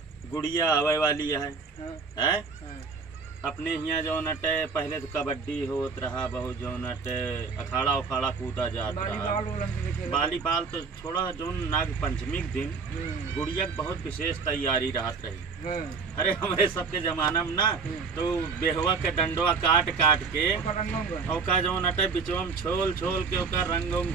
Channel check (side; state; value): left; quieter; 5.0 dB